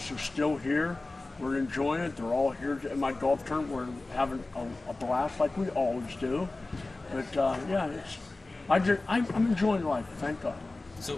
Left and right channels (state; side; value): quieter; right; 3.1 dB